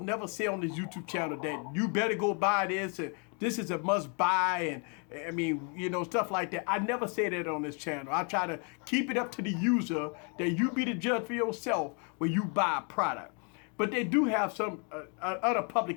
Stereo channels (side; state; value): right; quieter; 37.3 dB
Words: never say on this YouTube channel, that you better go buy this, and this is a must buy, and I mean, stuff like that. I never say that on this channel. I try to keep it up to the user, that you be the judge for yourself when you buy a product. But they do have some other